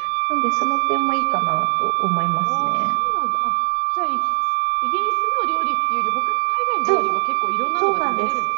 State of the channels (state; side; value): silent; left; 66 dB below the other